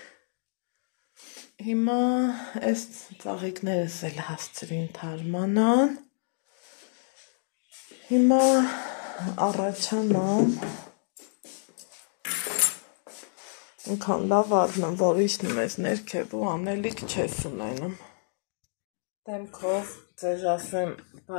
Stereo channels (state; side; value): silent; right; digital silence